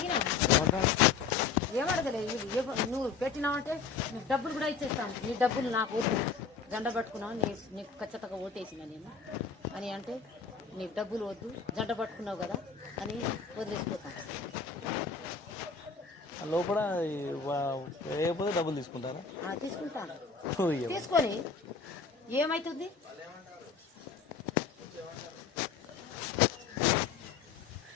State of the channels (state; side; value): quieter; right; 5.4 dB